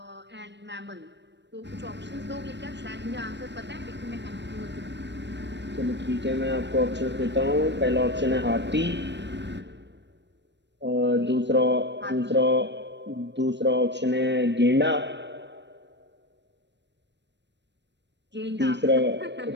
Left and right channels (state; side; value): late; left; 0.51 ms